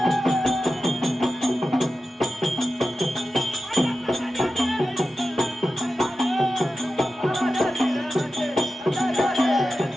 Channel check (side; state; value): both; normal; correlation 0.92